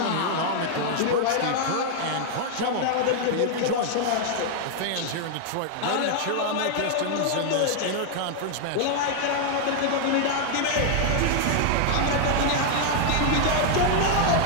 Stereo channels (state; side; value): different; both; correlation 0.00